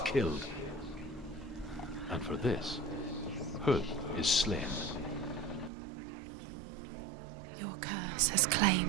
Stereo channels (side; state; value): left; drops out; at 5.7 s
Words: And for this, Huth is slain. Your curse has